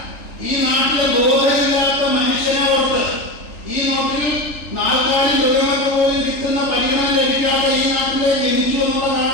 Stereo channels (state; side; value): late; right; 3.4 ms